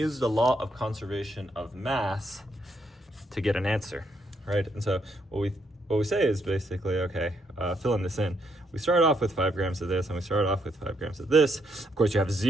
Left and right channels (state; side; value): normal; both; correlation 0.75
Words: the law of conservation of mass to get an answer, right? And so what we say is basically, okay, filling this in. We start off with 5 grams of this, and we start off with 5 grams of this. Of course, you have